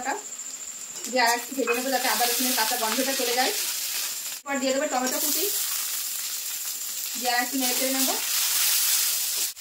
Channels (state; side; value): identical; both; correlation 1.00